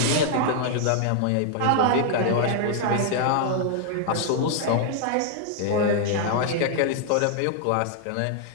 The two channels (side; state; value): both; different; correlation 0.00